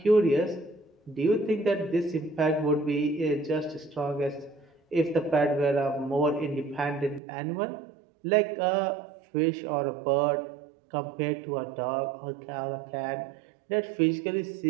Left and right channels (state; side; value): drops out; left; at 7.2 s